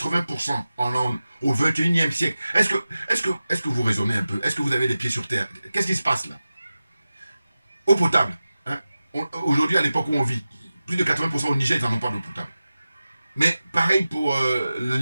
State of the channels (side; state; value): both; inverted; correlation -0.95